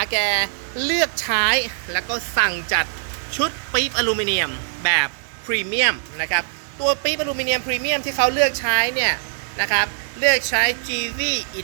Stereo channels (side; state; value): left; silent; digital silence